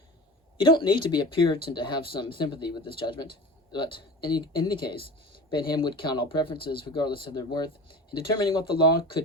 You don't need to be a Puritan to have some sympathy with this judgment, but in any case, Bentham would count all preferences, regardless of their worth, in determining what the law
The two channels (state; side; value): normal; both; correlation 0.35